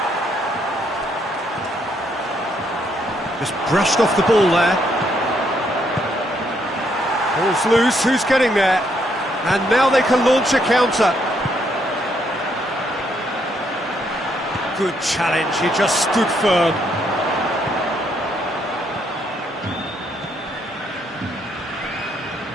Just brushed off the ball there. Ball's loose, who's getting there? And now they can launch a counter. Good challenge, he just stood firm.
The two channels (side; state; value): both; normal; correlation 0.73